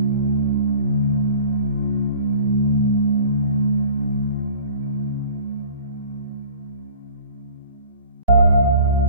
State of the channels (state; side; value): inverted; both; correlation -0.47